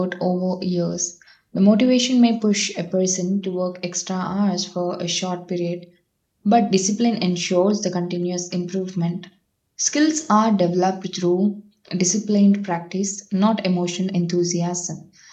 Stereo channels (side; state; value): both; identical; correlation 1.00